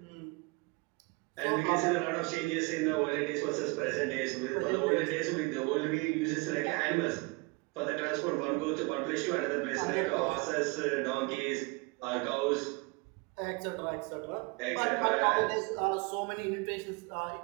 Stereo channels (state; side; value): quieter; left; 27.6 dB